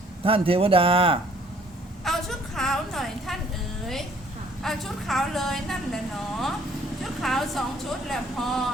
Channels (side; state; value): both; normal; correlation 0.60